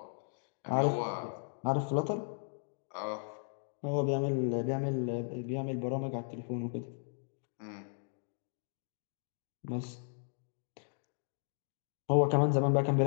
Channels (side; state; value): right; silent; digital silence